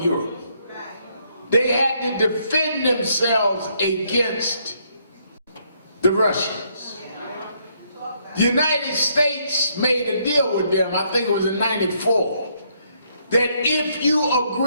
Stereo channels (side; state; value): both; inverted; correlation -0.72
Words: Europe. They had to defend themselves against the Russians. The United States made a deal with them, I think it was in '94, that if you